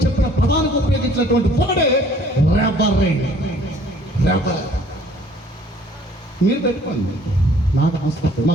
చెప్పిన పదానికి ఉపయోగించినటువంటి వర్డే రెవరెండ్. మీరు పెట్టుకోండి, నాకు అవసరం.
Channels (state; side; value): normal; both; correlation 0.57